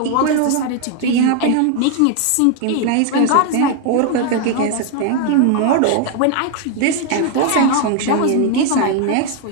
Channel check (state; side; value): different; both; correlation 0.00